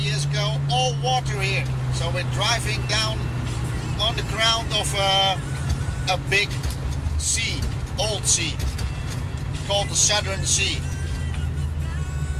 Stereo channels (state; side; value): identical; both; correlation 1.00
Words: years ago all water here. So we're driving down on the ground of a big sea, old sea, called the Southern Sea.